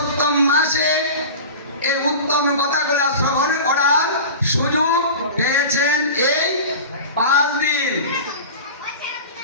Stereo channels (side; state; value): both; inverted; correlation -0.33